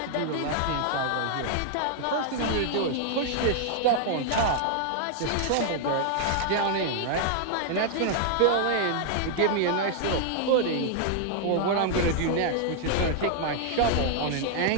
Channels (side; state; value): both; different; correlation -0.01